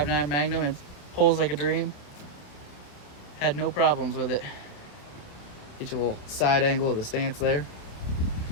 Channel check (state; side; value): late; right; 28 ms